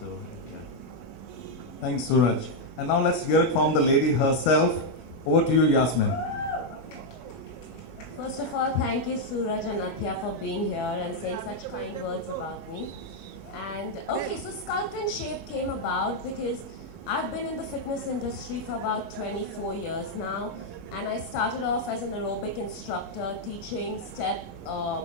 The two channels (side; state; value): right; late; 12 ms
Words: yeah. Thanks, Suraj. And now let's hear it from the lady herself. Over to you, Yasmin. First of all, thank you Suraj and Athiya for being here and saying such kind words about me. And okay, so Sculpt and Shape came about because I've been in the fitness industry for about 24 years now, and I started off as an aerobic instructor teaching step